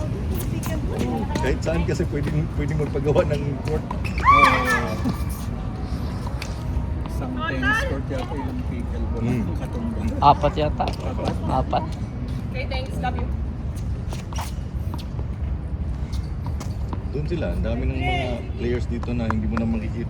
doon, puro pick and roll. Kahit saan kasi pwedeng magpagawa ng court. Isang tennis court yata ilang pickleball Mm. katumba. 4 yata. 4. Doon sila, ang dami ng mga players dito na hindi mo na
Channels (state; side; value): identical; both; correlation 1.00